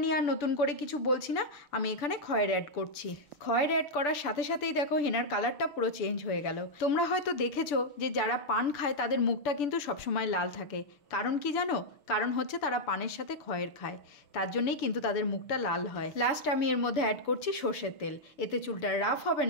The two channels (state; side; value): late; right; 6.9 ms